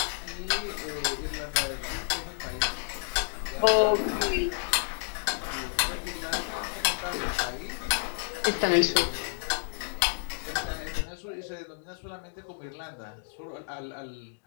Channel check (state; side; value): silent; right; digital silence